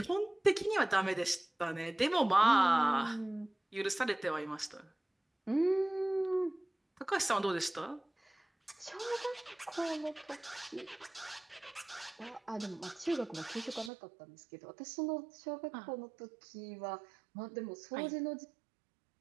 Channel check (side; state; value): left; drops out; at 13.9 s